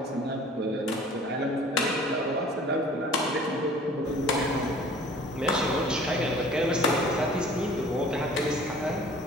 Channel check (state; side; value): normal; both; correlation 0.49